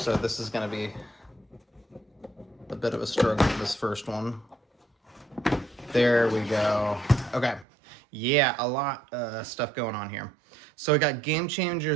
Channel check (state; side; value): drops out; left; at 7.7 s